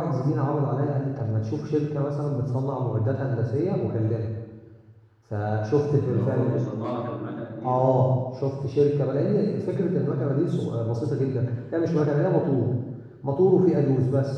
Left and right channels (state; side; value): identical; both; correlation 1.00